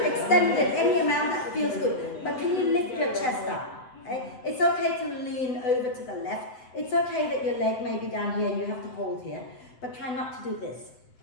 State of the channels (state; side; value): late; right; 7.9 ms